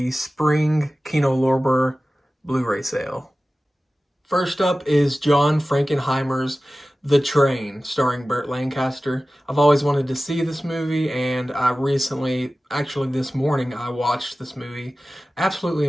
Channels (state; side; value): normal; both; correlation 0.96